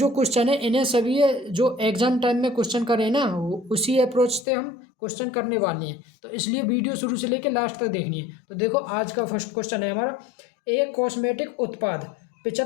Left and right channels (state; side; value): drops out; right; at 4.5 s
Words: क्वेश्चन है इन्हें सभी जो एग्जाम टाइम में क्वेश्चन करें ना, उसी अप्रोच से हम क्वेश्चन करने वाले हैं। तो इसलिए वीडियो शुरू से लेकर लास्ट तक देखनी है। तो देखो, आज का फर्स्ट क्वेश्चन है हमारा, एक कॉस्मेटिक उत्पाद